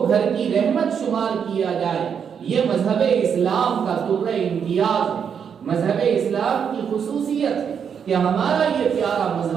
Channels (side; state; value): left; quieter; 7.3 dB